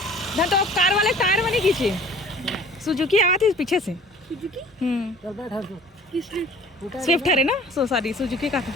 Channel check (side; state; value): both; normal; correlation 0.49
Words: धन तो कार वाले टायर में नहीं खींचे सुजुकी आया थी पीछे से स्विफ्ट है ना सो सॉरी सुजुकी का था।